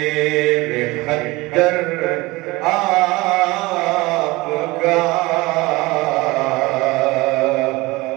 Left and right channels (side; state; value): left; quieter; 21.8 dB